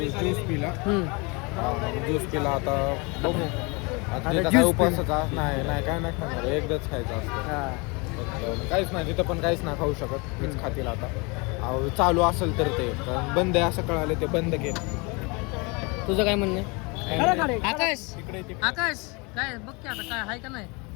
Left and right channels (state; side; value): quieter; right; 28.9 dB